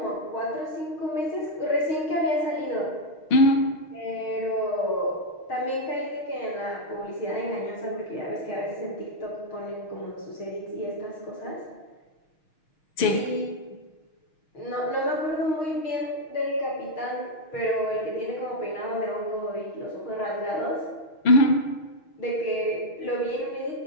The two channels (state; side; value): late; right; 6.4 ms